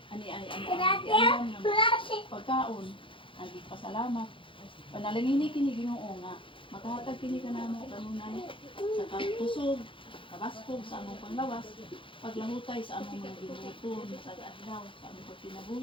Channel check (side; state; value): right; late; 0.25 ms